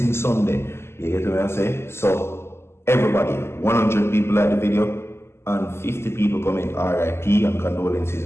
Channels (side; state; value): right; late; 0.12 ms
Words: Sunday. You get what I'm saying? So everybody, 100 people like the video and 50 people comment RIP and condolences